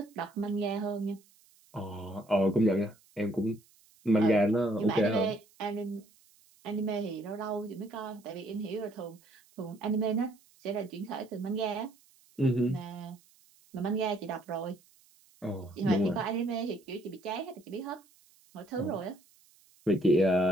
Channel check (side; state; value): right; noise; hiss, 30 dB below the sound